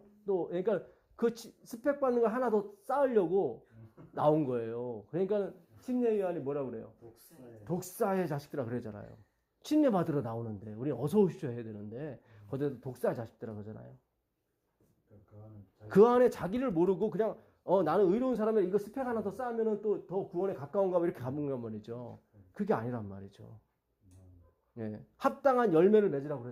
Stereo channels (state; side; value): identical; both; correlation 1.00